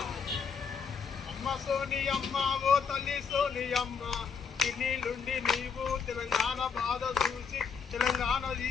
అమ్మ సోని అమ్మ ఓ తల్లి సోని అమ్మ ఇన్నిలుండి నీవు తెలంగాణ బాధ చూసి తెలంగాణ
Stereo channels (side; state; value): right; quieter; 6.2 dB